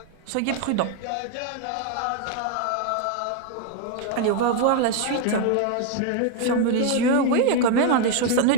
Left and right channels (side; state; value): both; different; correlation 0.01